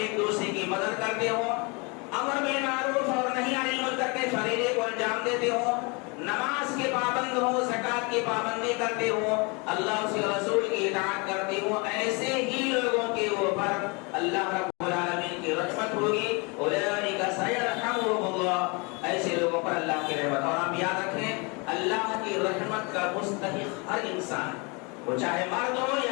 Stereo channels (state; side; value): quieter; right; 30.0 dB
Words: دوسرے کی مدد کرتے ہوں, امر بالمعروف اور نہی عن المنکر کے فریضے کو انجام دیتے ہوں, نماز کے پابند ہوں, زکات کی پابندی کرتے ہوں, اللہ اس کے رسول کی اطاعت کرتے ہوں, ایسے ہی لوگوں کے اوپر اللہ رب العالمین کی رحمت ہوگی. اولئک سیرحمهم اللہ. ایسے لوگوں پر اللہ کی رحمت. اور آپ یاد رکھیں اللہ کی رحمت کا مستحق ہر انسان, وہ چاہے مرد ہو